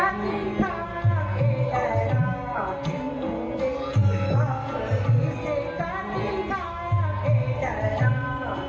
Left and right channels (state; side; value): identical; both; correlation 1.00